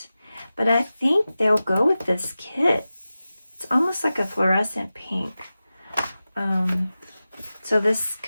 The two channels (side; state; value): both; inverted; correlation -0.95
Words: But I think they'll go with this kit. It's almost like a fluorescent pink. So this